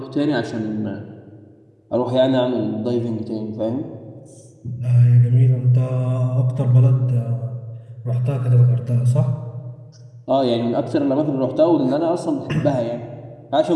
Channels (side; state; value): both; identical; correlation 1.00